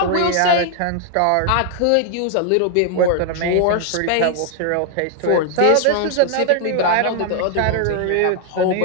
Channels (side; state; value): both; different; correlation 0.00